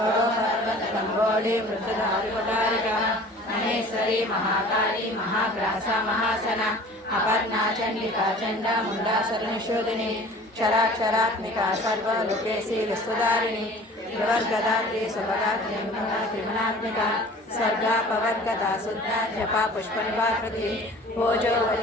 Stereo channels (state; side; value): normal; both; correlation 0.45